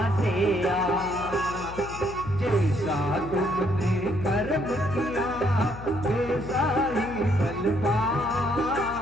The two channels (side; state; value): left; noise; hum, 13 dB below the sound